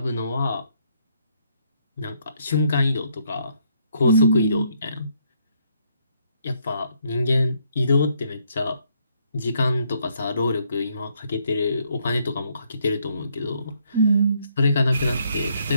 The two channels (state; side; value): inverted; both; correlation -0.71